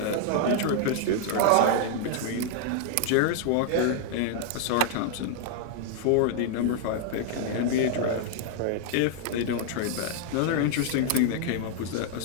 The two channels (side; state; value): both; different; correlation 0.00